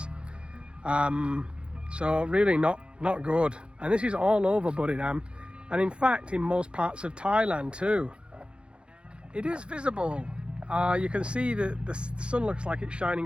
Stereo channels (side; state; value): left; late; 0.055 ms